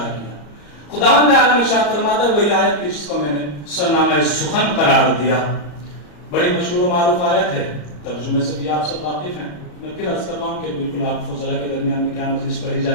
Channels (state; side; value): late; right; 34 ms